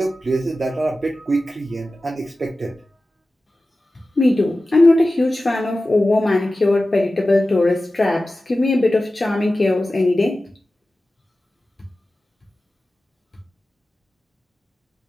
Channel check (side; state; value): both; normal; correlation 0.95